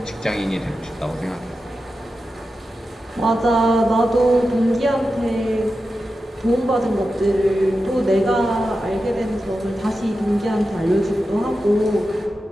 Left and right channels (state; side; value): normal; both; correlation 0.91